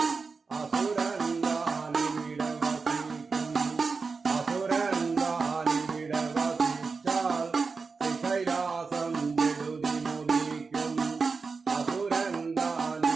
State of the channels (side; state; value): left; quieter; 4.6 dB